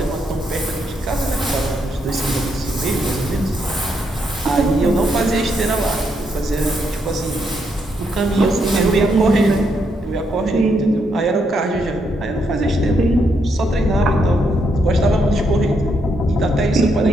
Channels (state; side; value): normal; both; correlation 0.78